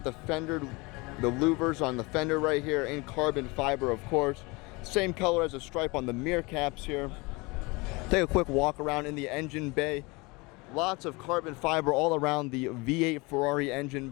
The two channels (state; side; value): quieter; right; 25.7 dB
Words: the fender, the louvers on the fender right here in carbon fiber, of course. Same color as a stripe on the mirror caps here. Take a quick walk around in the engine bay. Lots of carbon fiber all around the V8 Ferrari engine